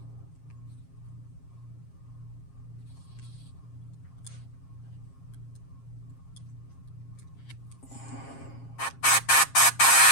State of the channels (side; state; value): right; late; 7.4 ms